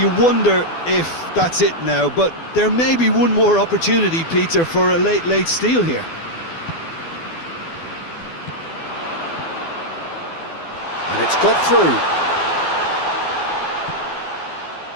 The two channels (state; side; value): late; right; 12 ms